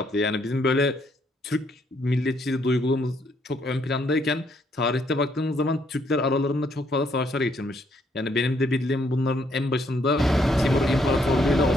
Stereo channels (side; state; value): both; normal; correlation 0.71